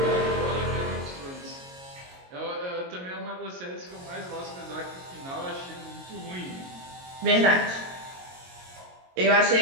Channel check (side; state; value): left; late; 22 ms